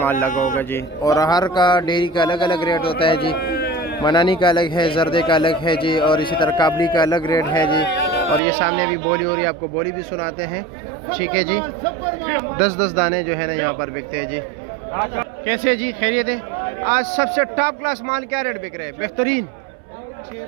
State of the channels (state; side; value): drops out; left; at 8.4 s